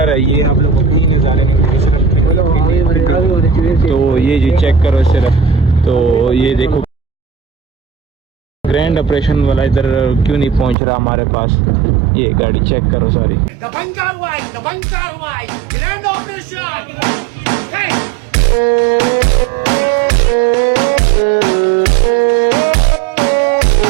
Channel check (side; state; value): left; drops out; at 10.8 s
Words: है ये, आप लोग को भी नहीं जाने की। तो ये जी चेक करो सिर्फ, तो ये देखो ग्रैंड ऑपरेशन वाला इधर क्यों नहीं पहुंच रहा हमारे पास। ये गाड़ी चेक करो सारी। ग्रैंड ऑपरेशन